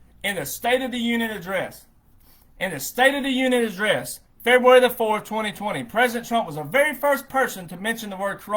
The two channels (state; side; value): identical; both; correlation 1.00